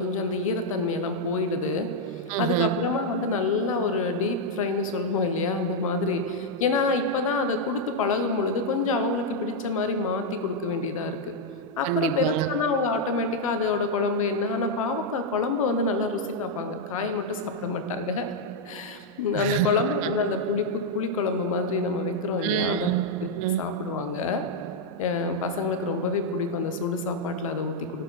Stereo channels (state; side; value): normal; both; correlation -0.02